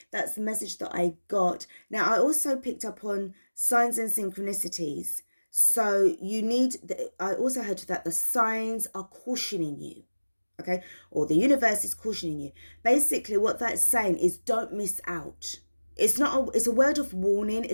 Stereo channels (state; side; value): inverted; both; correlation -1.00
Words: that's the message that I got. Now, I also picked up on signs and synchronicities. So I also heard that the signs are cautioning you. Okay, or the universe is cautioning you. Basically, what that's saying is don't miss out. It's a word of warning.